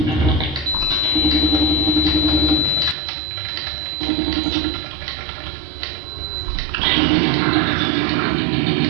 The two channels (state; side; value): drops out; left; at 3.0 s